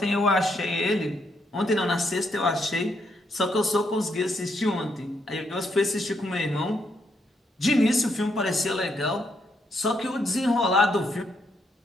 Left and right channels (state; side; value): normal; both; correlation 0.76